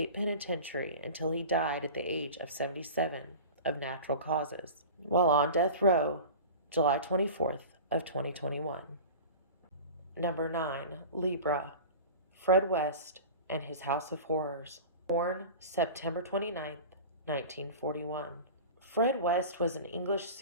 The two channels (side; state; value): both; inverted; correlation -0.35